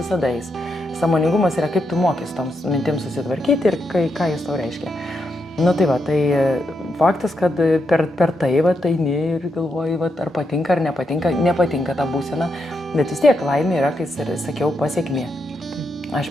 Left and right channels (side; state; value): both; normal; correlation 0.82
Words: eis. Sąmoningumas yra, kaip tu mokys toms mintims susitvarkyti ir ką jis tau reiškia. Nu tai va, tai faktas, kad per tai va, eini ir galvoji, va, ar patinka ar nepatinka ta būsena, bet vis tiek laimė yra, kai sakiau, pasiekmė. Aš